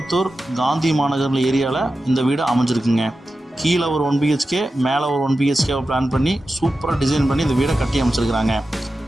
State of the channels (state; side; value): normal; both; correlation 0.93